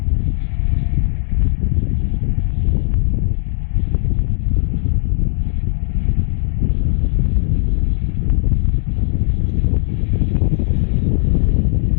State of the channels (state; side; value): silent; right; digital silence